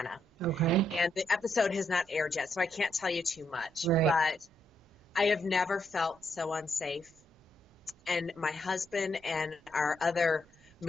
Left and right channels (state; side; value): normal; both; correlation 0.78